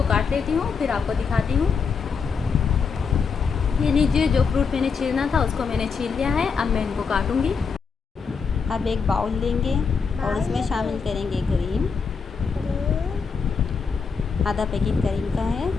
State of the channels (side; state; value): right; quieter; 5.6 dB